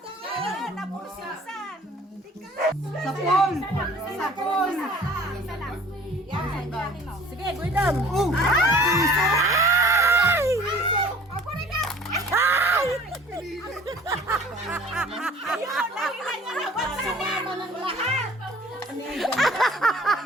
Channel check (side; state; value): both; normal; correlation 0.49